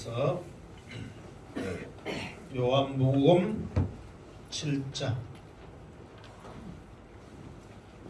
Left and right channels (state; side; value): identical; both; correlation 1.00